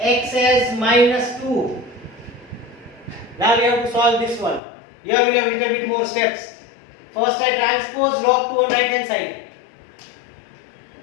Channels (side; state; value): right; drops out; at 4.6 s